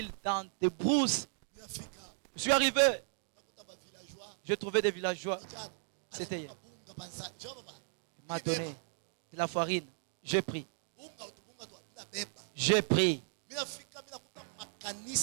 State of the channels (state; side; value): silent; left; digital silence